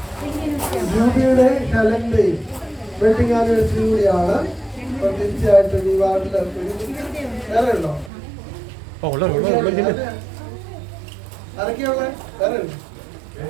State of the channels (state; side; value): drops out; left; at 8.1 s